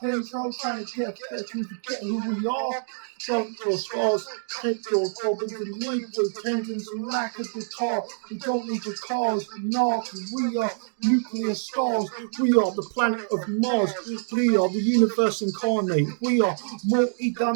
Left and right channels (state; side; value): silent; left; digital silence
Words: trying to get to forget who we are. Don't your scars, take your problems and leave with tendons and lack of guitar. We don't need your cars, nah, we are nuclear stars. We are the planet of Mars. We are the universe incarnate. We are